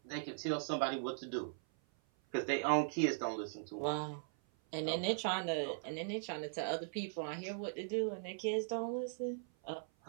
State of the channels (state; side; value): silent; left; 52 dB below the other